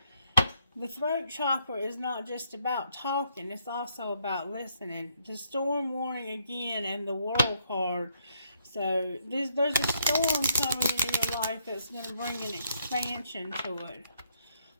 The throat chakra is not just about talking, it's also about listening. The storm warning again and the world card. So there's a storm coming into your life that's going to bring an expansion to it.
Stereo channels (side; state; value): both; inverted; correlation -0.73